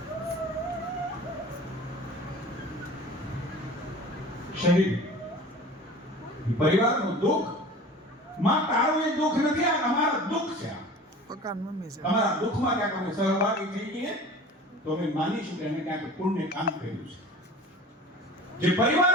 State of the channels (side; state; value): both; normal; correlation 0.40